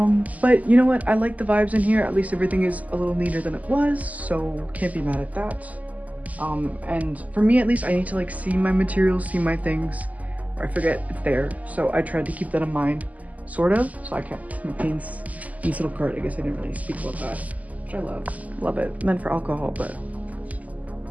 But you know what? I like the vibes in here. At least everything is a little neater than it was, so can't be mad at that. And for me at least, I need to like see my materials, see my things, or I forget it's there. So I tried to keep that in mind, sort of. So I kept my paints in this little cart. I guess I didn't really speak about that, which I love. Love it. Meant for alcohol, but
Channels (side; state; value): left; late; 0.075 ms